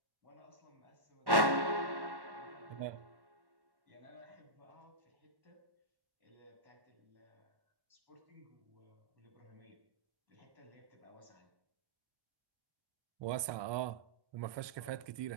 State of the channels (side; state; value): left; late; 1.1 ms